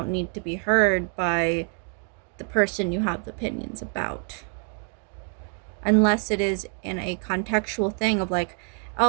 need to be heard by the person you have the opinions about. Unless it is in a contextual thing of like,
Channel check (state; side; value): quieter; left; 38.8 dB